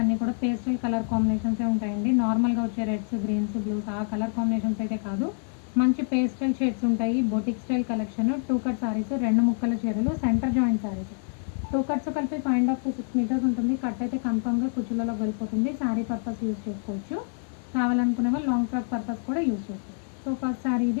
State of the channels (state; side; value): silent; right; 57 dB below the other